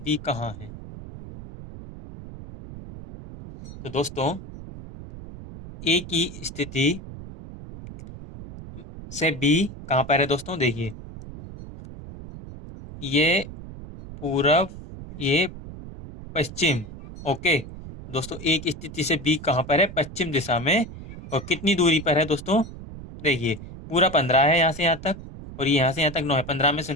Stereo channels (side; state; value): right; noise; rumble, 13 dB below the sound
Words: कहाँ है? तो दोस्तों, ए की स्थिति से बी कहाँ पर है दोस्तों? देखिए, ये पूरब, ये पश्चिम। ओके दोस्तों, ए की स्थिति से बी कहाँ पर है? पश्चिम दिशा में। और कितनी दूरी पर है दोस्तों? देखिए, पूरा 15 है यहाँ से यहाँ तक, और ये यहाँ से यहाँ तक 9 है। 15 में से